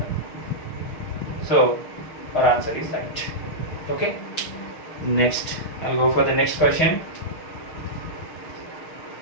So our answer is right. Okay. Next, I'll go for the next question.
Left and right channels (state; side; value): late; right; 6.4 ms